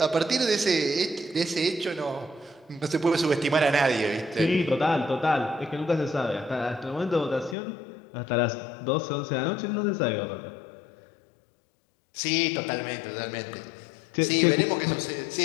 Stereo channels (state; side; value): drops out; right; at 7.6 s